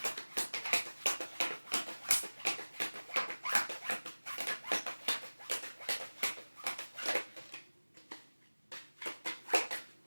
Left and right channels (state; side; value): inverted; both; correlation -1.00